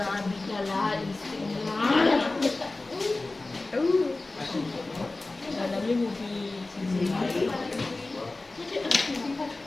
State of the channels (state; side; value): quieter; right; 3.2 dB